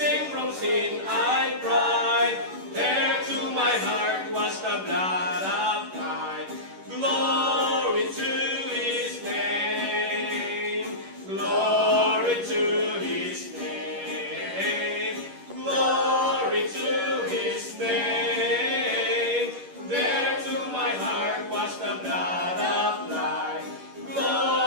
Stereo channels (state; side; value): late; left; 11 ms